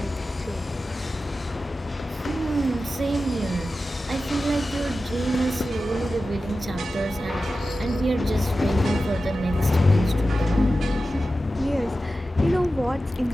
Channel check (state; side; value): normal; both; correlation 0.93